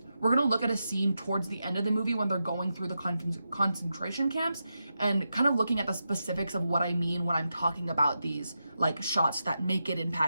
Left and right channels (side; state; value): both; inverted; correlation -0.88